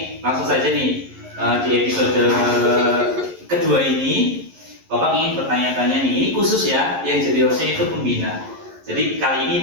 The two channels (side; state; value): left; late; 11 ms